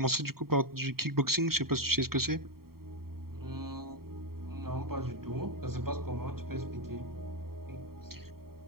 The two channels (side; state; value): left; late; 0.93 ms